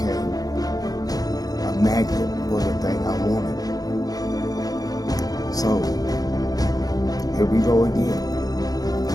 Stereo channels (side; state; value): right; late; 0.18 ms